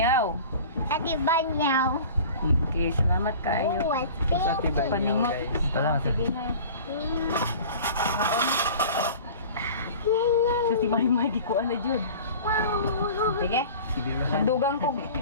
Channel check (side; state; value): both; inverted; correlation -0.41